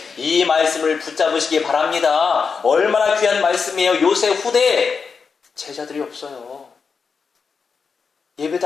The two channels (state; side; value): quieter; right; 5.5 dB